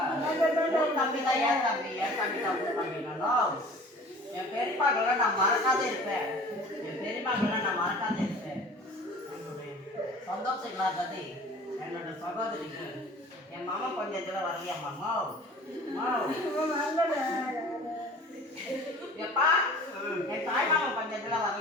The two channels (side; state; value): both; normal; correlation 0.45